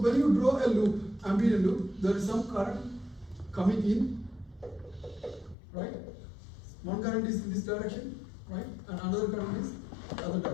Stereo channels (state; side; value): drops out; right; at 5.6 s